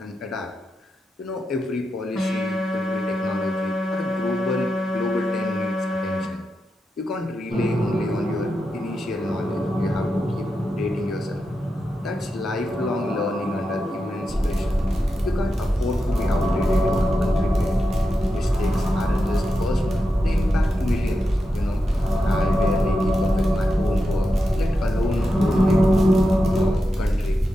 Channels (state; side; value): normal; both; correlation 0.88